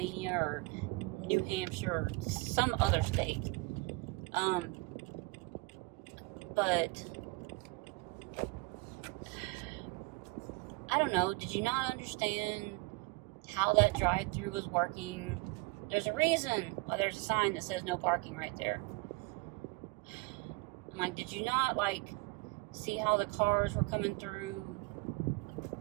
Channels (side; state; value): left; quieter; 25.7 dB